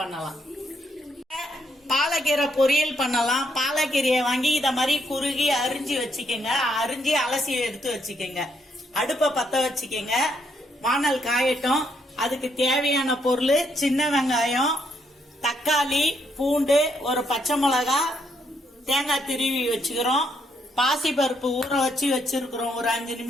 பாலக்கீரை பொரியல் பண்ணலாம். பாலக்கீரையை வாங்கி இத மாதிரி குறுகி அரிஞ்சு வச்சுக்கோங்க. அரிஞ்சு அலசி எடுத்து வச்சுக்கோங்க. அடுப்ப பத்த வச்சுக்கோங்க. வானல் காயட்டும். அதுக்கு தேவையான பொருள் சின்ன வெங்காயம், தக்காளி, பூண்டு, ஒரு பச்சை மிளகா, தேங்காய் திருவி வச்சுக்கிறோம். பாசி பருப்பு ஊற வச்சு வச்சிருக்கிறோம் ஒரு 5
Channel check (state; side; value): normal; both; correlation 0.74